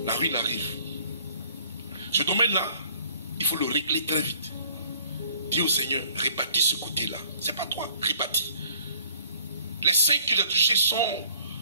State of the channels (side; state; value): both; inverted; correlation -0.57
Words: La ruine arrive. Ce domaine-là, il faut le régler très vite. Dis au Seigneur, répartis ce côté-là. C'est pas toi, répartis. Les 5 que tu as touchés sont